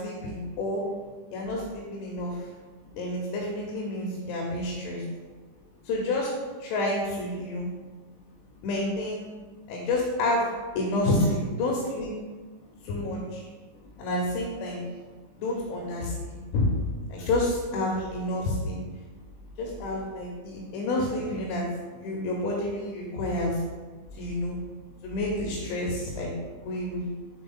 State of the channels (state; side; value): late; right; 20 ms